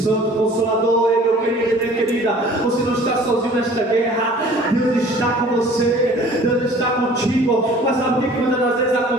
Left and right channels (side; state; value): both; normal; correlation 0.49